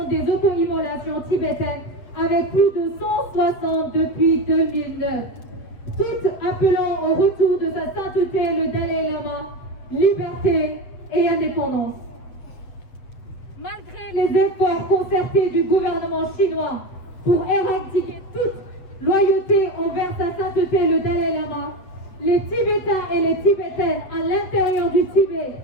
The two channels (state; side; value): late; right; 7.7 ms